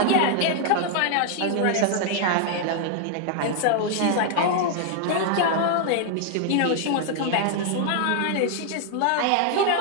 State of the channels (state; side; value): different; both; correlation 0.00